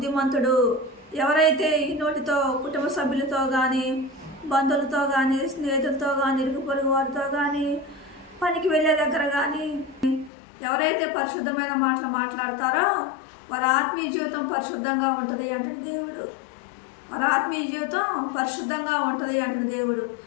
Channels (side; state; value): right; drops out; at 10.3 s